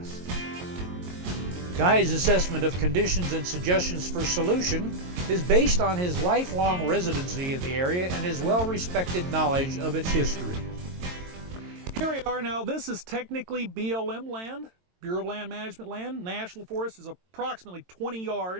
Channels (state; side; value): late; left; 22 ms